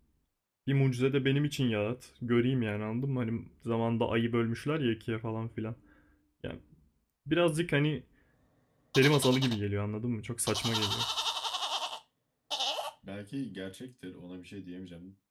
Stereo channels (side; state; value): both; identical; correlation 1.00